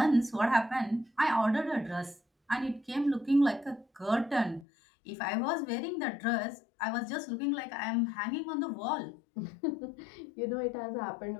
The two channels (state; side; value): drops out; right; at 4.7 s